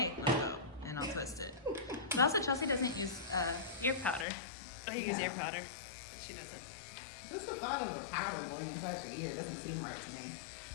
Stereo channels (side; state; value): right; drops out; at 4.2 s